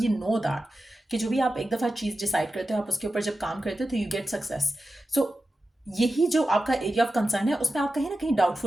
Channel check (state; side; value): normal; both; correlation 0.92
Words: नो दैट कि जो भी आप एक दफ़ा चीज़ डिसाइड करते हो, आप उसके ऊपर जब काम करते हो तो यू गेट सक्सेस। सो यही जो आपका एरिया ऑफ कंसर्न है, उसमें आप कहीं ना कहीं